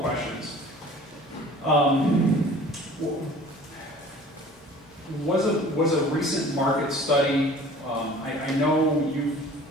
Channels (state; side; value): normal; both; correlation 0.47